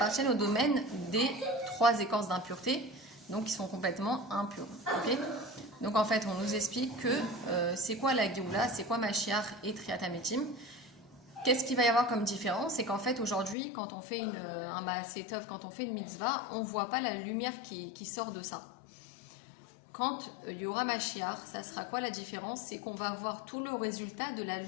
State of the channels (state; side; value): drops out; right; at 13.6 s